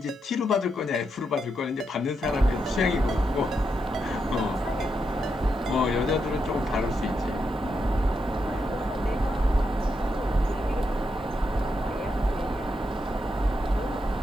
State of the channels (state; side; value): normal; both; correlation 0.83